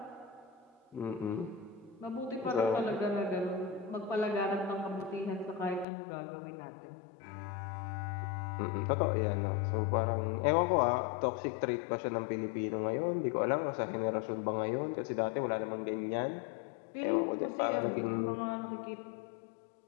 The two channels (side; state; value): right; drops out; at 5.9 s